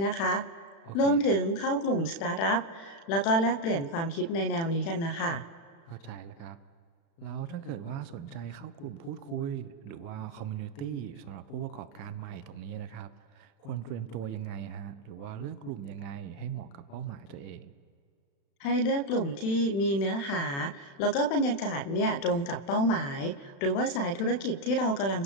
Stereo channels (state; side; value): late; right; 36 ms